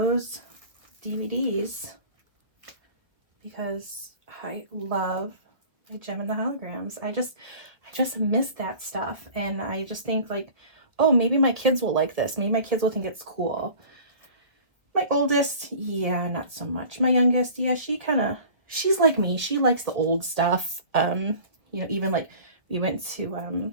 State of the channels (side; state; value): left; late; 1.4 ms